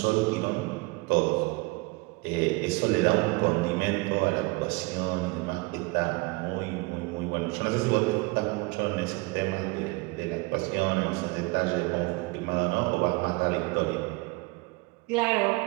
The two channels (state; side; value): quieter; left; 25.1 dB